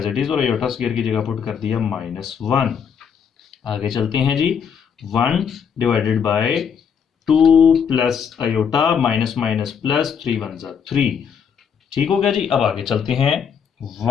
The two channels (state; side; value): quieter; right; 7.2 dB